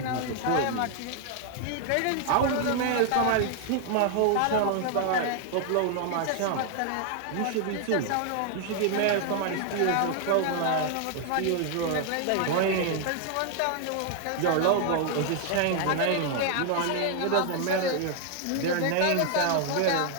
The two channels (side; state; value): both; different; correlation 0.00